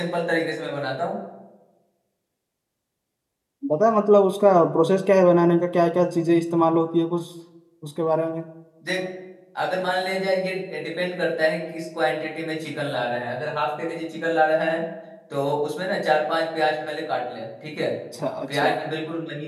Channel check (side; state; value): both; identical; correlation 1.00